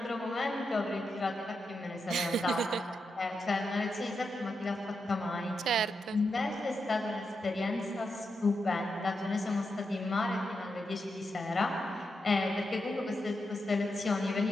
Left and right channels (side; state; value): both; normal; correlation 0.86